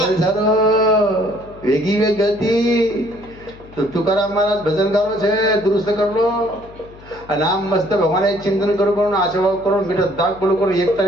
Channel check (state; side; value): noise; left; hum, 21 dB below the sound